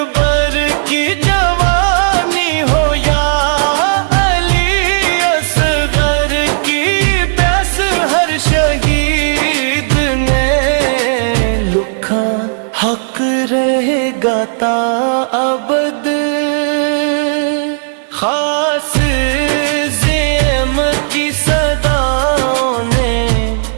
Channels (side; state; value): left; silent; digital silence